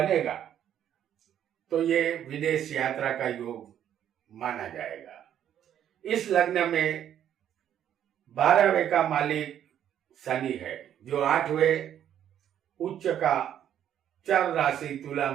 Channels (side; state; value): left; quieter; 10.2 dB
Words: तो ये विदेश यात्रा का योग माना जाएगा। इस लग्न में 12वें का मालिक शनि है जो 8वें उच्च का चर राशि तुला